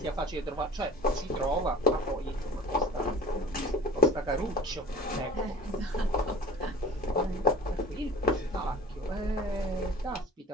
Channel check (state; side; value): normal; both; correlation 0.42